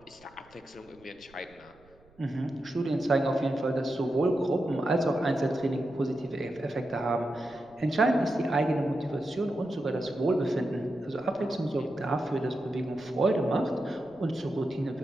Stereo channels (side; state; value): right; noise; rumble, 29 dB below the sound